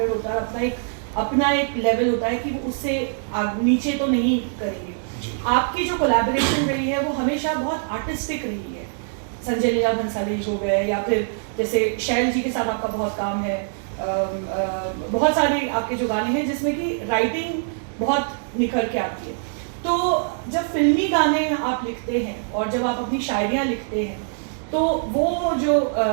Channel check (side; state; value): left; silent; digital silence